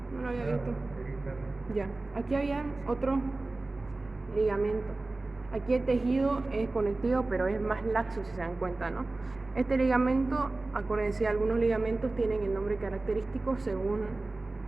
no lo había visto. Ya, aquí había otro ligamento. Aquí el tejido es conectivo, pero es más laxo, si se dan cuenta, ¿no? Este ligamento, acuérdense, algunos ligamentos tienen el nombre característico según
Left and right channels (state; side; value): quieter; left; 3.1 dB